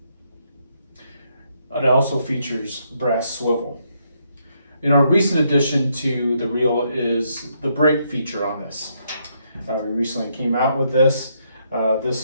It also features brass swivel. A recent addition to the reel is the brake feature on this. We recently came out with this.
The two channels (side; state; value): both; inverted; correlation -0.75